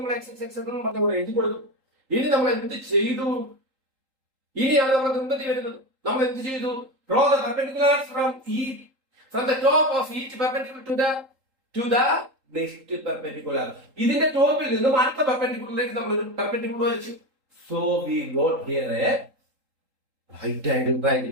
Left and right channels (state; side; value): late; left; 3.8 ms